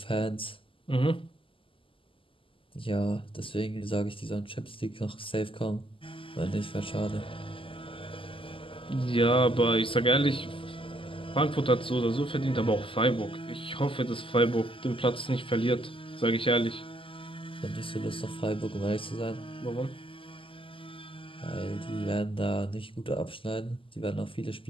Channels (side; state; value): right; late; 0.25 ms